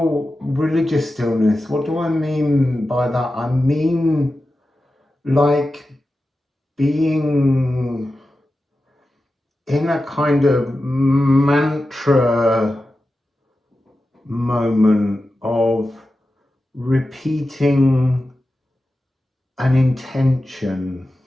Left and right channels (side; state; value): both; normal; correlation 0.92